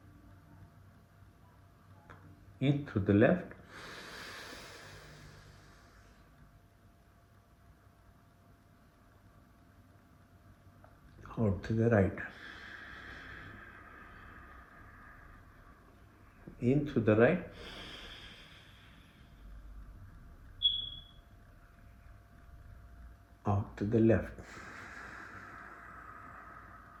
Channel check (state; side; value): identical; both; correlation 1.00